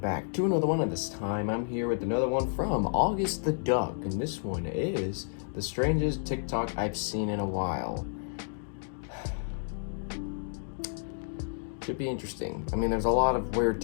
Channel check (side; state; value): right; silent; digital silence